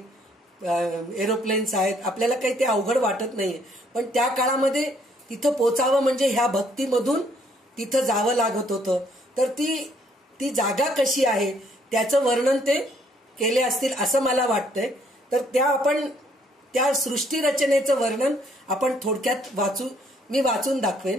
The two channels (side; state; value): both; normal; correlation 0.66